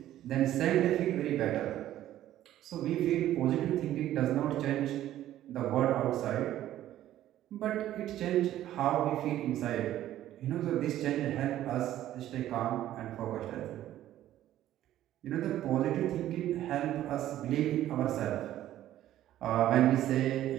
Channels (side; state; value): left; quieter; 13.0 dB